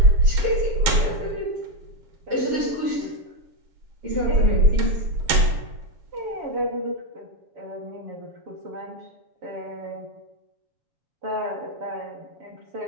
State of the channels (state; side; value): late; left; 7.5 ms